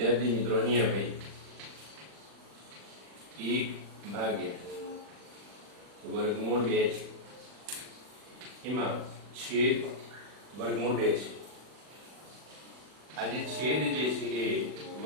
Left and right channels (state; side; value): late; left; 40 ms